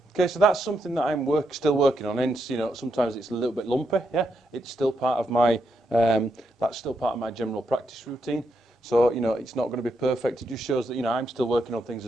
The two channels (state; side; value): normal; both; correlation 0.81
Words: Okay, so that's something that I'm still working on. And sometimes it's a little bit lumpy. Yeah, it's still part of my that's still part of my general practice routine. So it's not going to be perfect. It just shows that I'm still working on things